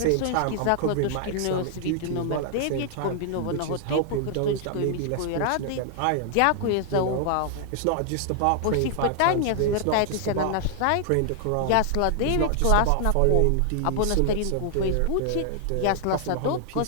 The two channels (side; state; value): both; different; correlation 0.00